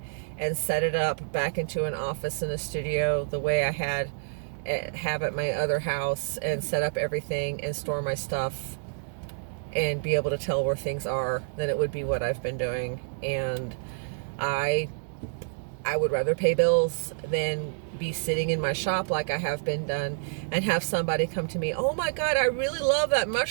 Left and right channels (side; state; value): left; silent; digital silence